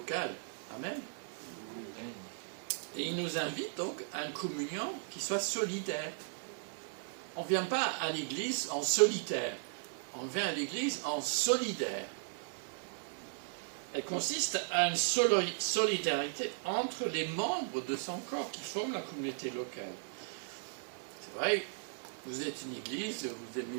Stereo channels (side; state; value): left; silent; digital silence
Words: Amen. Et il nous invite donc à une communion qui soit solidaire. On ne vient pas à l'église en solitaire, on vient à l'église en solidaire. Elle consiste à une solidarité entre les membres de son corps qui forment la communauté locale. C'est vrai, vous êtes une église, vous